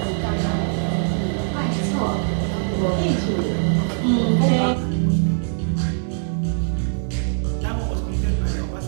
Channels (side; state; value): left; silent; digital silence